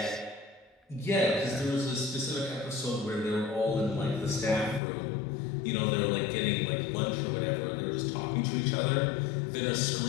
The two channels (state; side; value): drops out; right; at 4.8 s